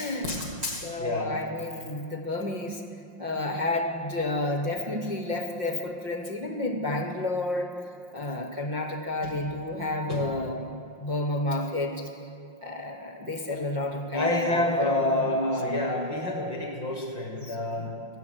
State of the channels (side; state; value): left; late; 5.6 ms